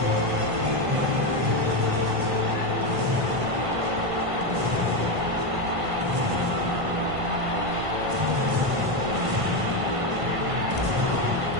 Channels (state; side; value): late; left; 1.6 ms